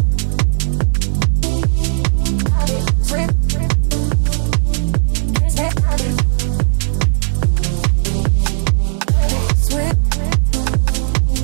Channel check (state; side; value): silent; left; digital silence